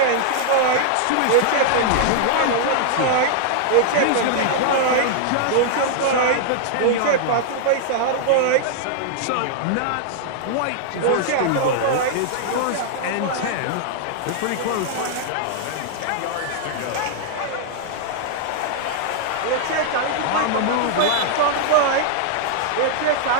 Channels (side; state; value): both; different; correlation -0.01